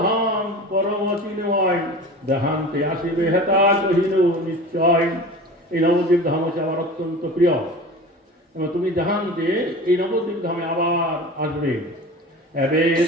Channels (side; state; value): both; normal; correlation 0.36